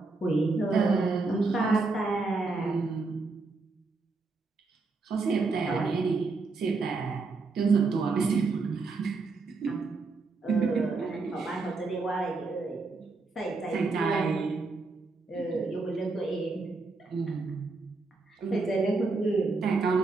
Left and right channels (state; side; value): quieter; left; 3.9 dB